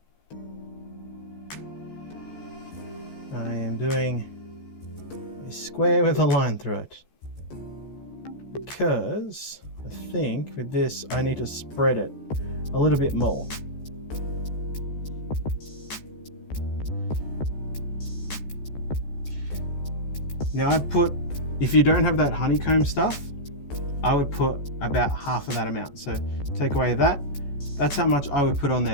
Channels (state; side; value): late; right; 14 ms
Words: I am doing a square with a line through it because I think with this, I need to spread it a little bit more. Now I'd put, if you don't have that honeycomb stuff, I would put about half of that amount. So take away that, that's how much I would put on